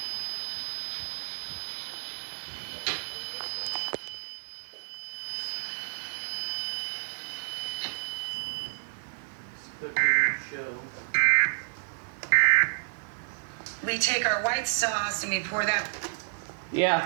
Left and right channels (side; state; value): left; silent; 58 dB below the other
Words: Okay. Show. We take our white sauce and we pour that.